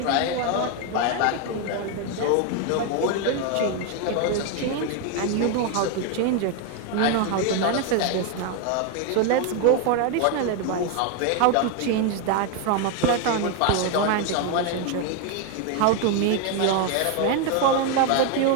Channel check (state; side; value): different; both; correlation 0.01